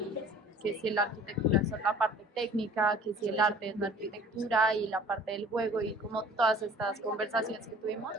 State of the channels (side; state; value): both; normal; correlation 0.49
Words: que si la arquitectura es la parte técnica, que si el arte es la arquitectura y la parte del juego y como todas estas conversaciones que tuvimos